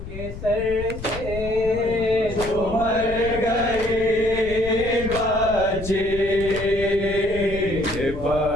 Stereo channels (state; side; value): noise; left; rumble, 10 dB below the sound